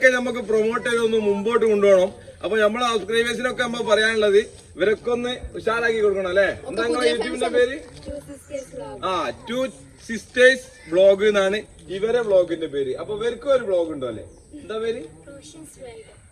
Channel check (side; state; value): both; identical; correlation 1.00